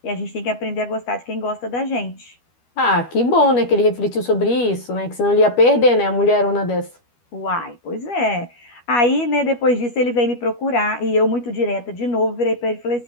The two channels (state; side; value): late; right; 12 ms